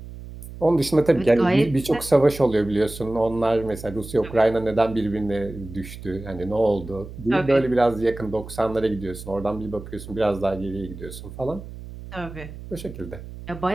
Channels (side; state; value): right; noise; hum, 13 dB below the sound